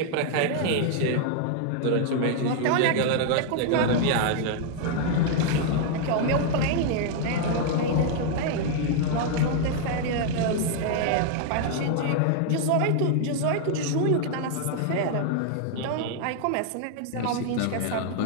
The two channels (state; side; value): different; both; correlation 0.00